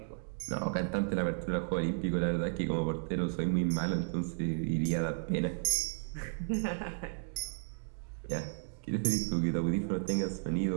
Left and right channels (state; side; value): silent; left; digital silence